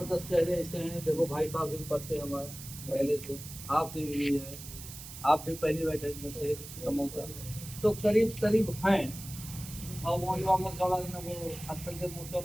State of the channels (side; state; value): right; noise; hiss, 12 dB below the sound